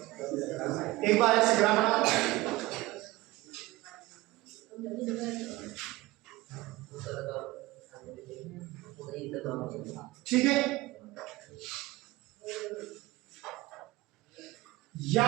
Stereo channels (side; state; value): left; quieter; 19.4 dB